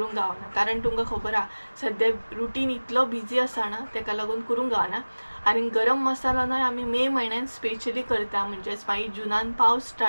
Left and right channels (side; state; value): both; inverted; correlation -1.00